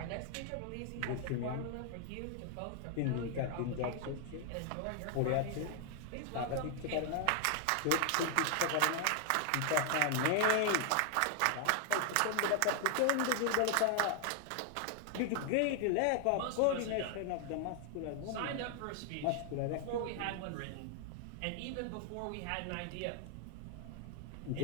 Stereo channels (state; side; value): different; both; correlation 0.00